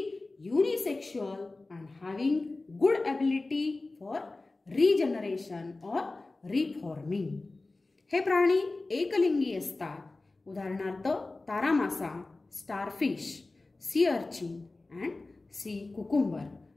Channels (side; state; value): right; quieter; 3.2 dB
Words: unisexual and having good ability for regeneration or reforming. हे प्राणी एकलिंगी असतात. उदाहरणार्थ तारा मासा, starfish, sea urchin and sea cucumber,